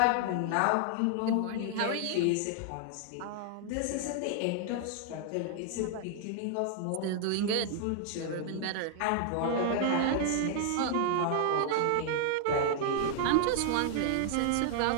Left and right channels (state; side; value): different; both; correlation 0.00